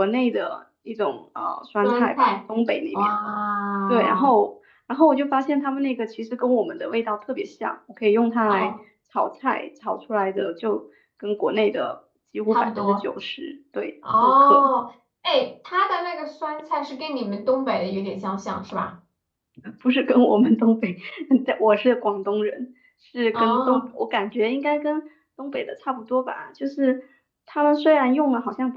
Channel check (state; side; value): identical; both; correlation 1.00